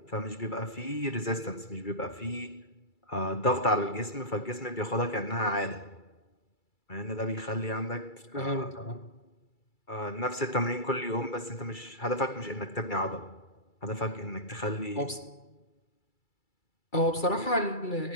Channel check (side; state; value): right; late; 2.3 ms